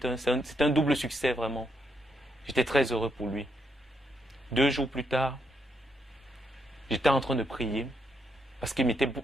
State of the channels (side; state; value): both; normal; correlation 0.79